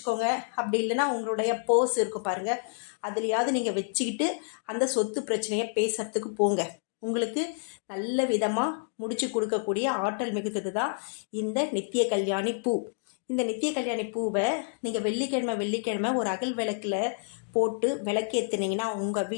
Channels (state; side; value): silent; right; digital silence